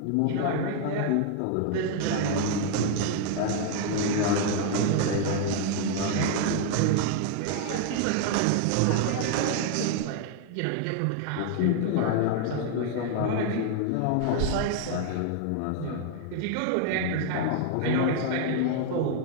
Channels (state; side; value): different; both; correlation 0.00